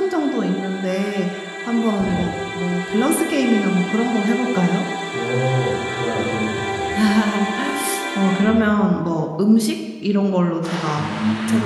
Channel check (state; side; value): identical; both; correlation 1.00